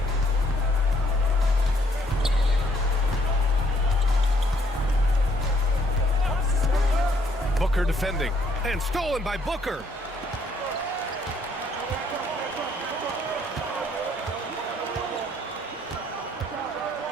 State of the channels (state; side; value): normal; both; correlation 0.67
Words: Booker defending, and stolen by Booker.